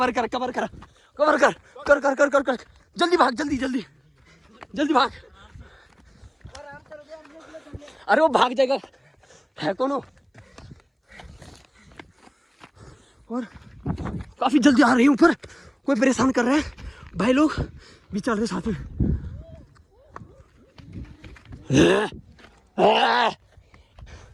कर, कवर कर, कवर कर, कर कर कर कर कर, जल्दी भाग, जल्दी जल्दी जल्दी भाग। अरे वो भाग जाएगा, है कौन हो? और काफी जल्दी आ रही हूँ, ऊपर कोई परेशान कर रहा है, भाई लोग भी चल रहे साथ में।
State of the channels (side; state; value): both; identical; correlation 1.00